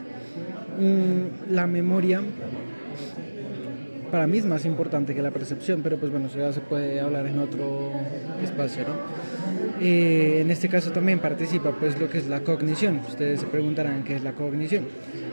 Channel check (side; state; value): both; inverted; correlation -1.00